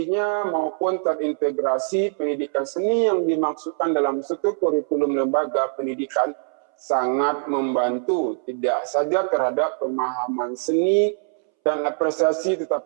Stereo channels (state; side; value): silent; left; 63 dB below the other